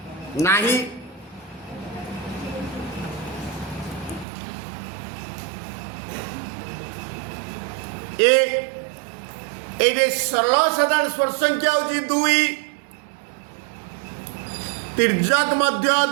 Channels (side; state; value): left; drops out; at 4.2 s